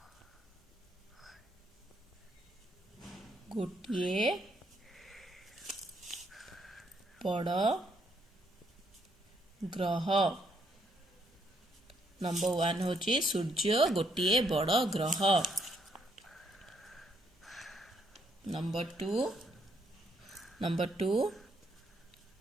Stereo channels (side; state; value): both; normal; correlation 0.72